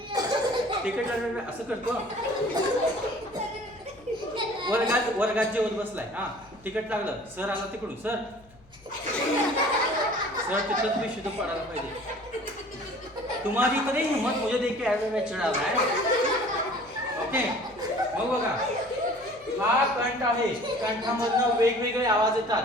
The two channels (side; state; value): left; noise; hum, 27 dB below the sound